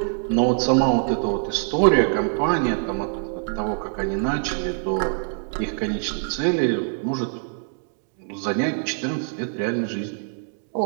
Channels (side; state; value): left; silent; 63 dB below the other